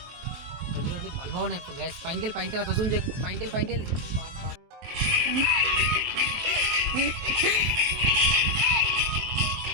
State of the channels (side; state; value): left; late; 23 ms